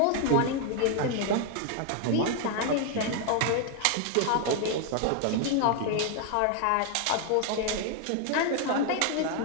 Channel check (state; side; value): different; both; correlation 0.00